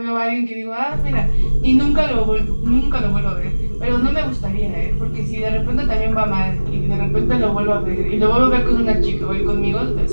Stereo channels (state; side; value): inverted; both; correlation -1.00